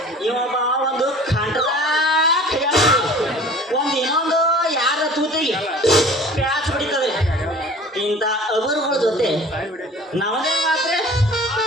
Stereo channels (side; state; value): both; normal; correlation 0.45